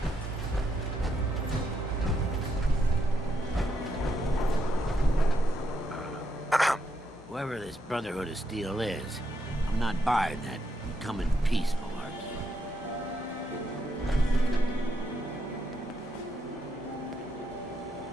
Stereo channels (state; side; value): normal; both; correlation 0.79